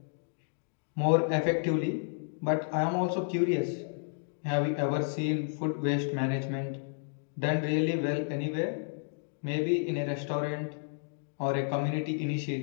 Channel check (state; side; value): silent; right; digital silence